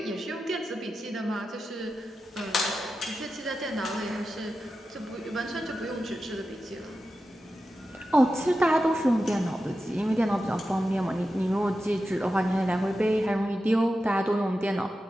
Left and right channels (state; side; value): normal; both; correlation 0.91